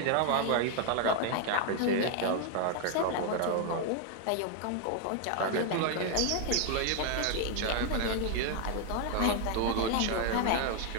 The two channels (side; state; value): both; different; correlation 0.00